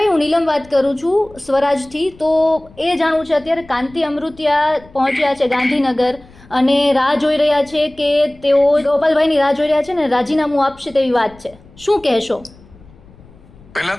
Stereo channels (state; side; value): noise; left; rumble, 25 dB below the sound